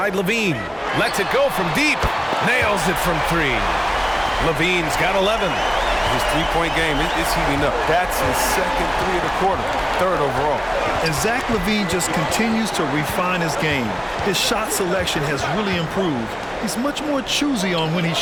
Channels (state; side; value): identical; both; correlation 1.00